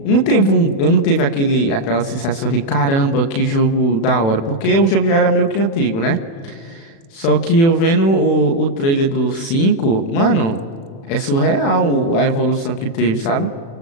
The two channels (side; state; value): right; late; 36 ms